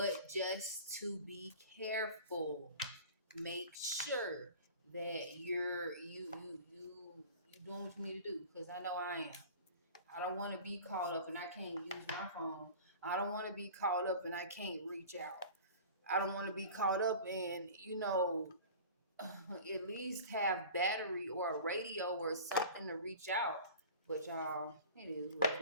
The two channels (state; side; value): inverted; both; correlation -0.40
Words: just to be careful, make sure that you doing what you need to do, because I know I am. I don't want to be caught up and I can't use my phone. I don't want to be caught up and I can't reach out. I don't want to be caught up and at least have battery or a radio or something to reach out. But y'all, it is what